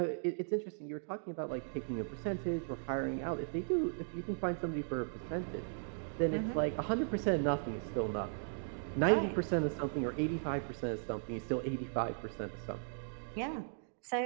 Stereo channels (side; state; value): left; silent; digital silence